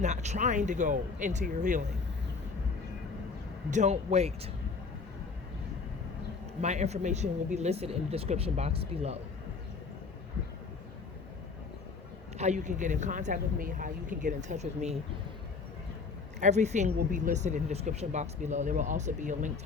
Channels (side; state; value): right; quieter; 4.6 dB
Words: trying to go into your healing. Don't wait. My information will be listed in the description box below. How you can get in contact with me, how you can get in touch with me. Everything will be listed in the description box below. There will also be a link